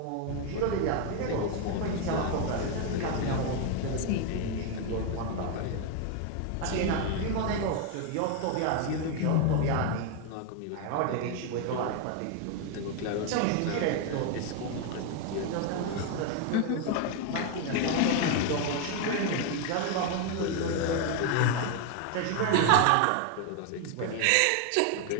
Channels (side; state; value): both; different; correlation 0.01